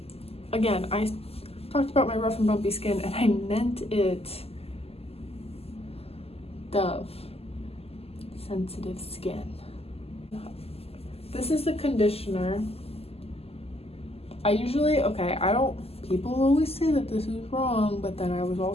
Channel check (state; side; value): late; right; 0.29 ms